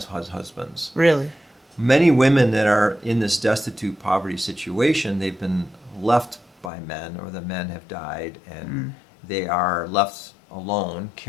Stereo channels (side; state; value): right; drops out; at 6.7 s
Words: husbands. Really? Many women that are in this destitute poverty situation, they've been left by men, or the men have died, and they are left alone